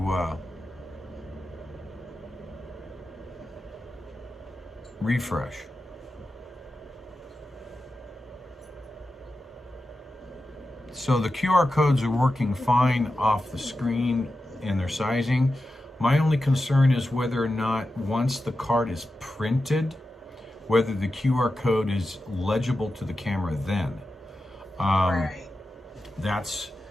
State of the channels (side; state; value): both; normal; correlation 0.91